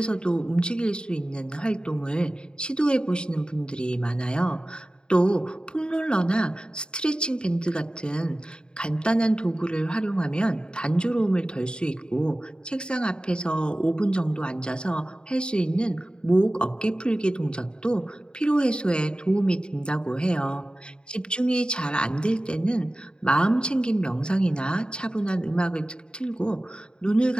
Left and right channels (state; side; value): late; right; 0.050 ms